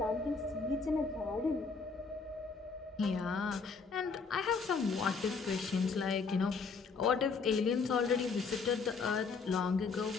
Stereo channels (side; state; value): right; quieter; 4.9 dB